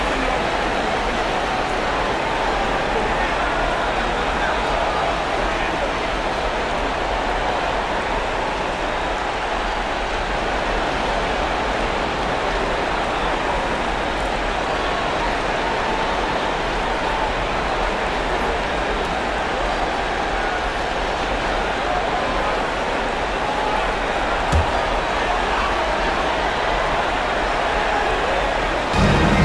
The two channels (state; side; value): identical; both; correlation 1.00